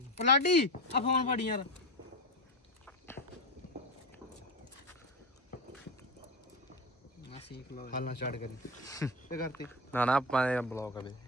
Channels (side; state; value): both; normal; correlation 0.21